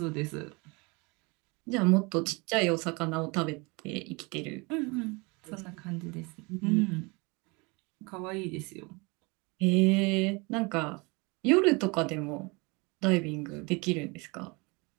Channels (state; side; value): quieter; left; 27.8 dB